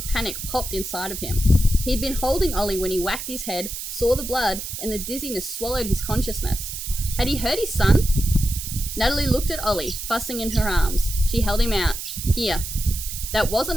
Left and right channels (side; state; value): right; noise; hiss, 7 dB below the sound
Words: panic popped inside of him. He'd been holding Ollie when he whacked his head, saw the blood, and the dizziness swallowed his consciousness. Had he hurt his son? Natalie looked at Ollie, fussing in her arms. She held him out. Here. That